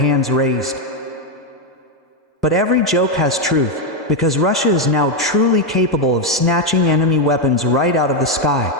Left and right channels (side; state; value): both; normal; correlation 0.05